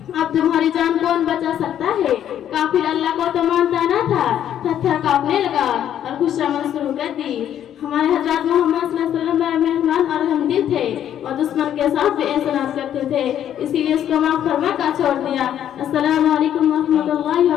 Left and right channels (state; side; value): quieter; right; 10.4 dB